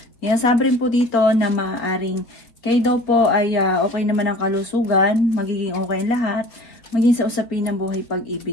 Sinasabi rin po dito na maaaring kayo daw po ay okay naman ang kalusugan, magiging okay lahat, maging sa usapin ng buhay,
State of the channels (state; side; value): late; right; 3.7 ms